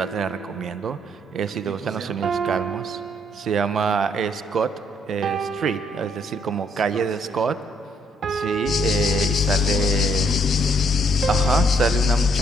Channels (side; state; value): both; normal; correlation 0.69